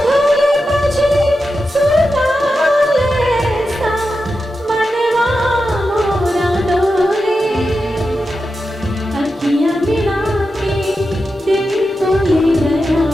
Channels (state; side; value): normal; both; correlation 0.90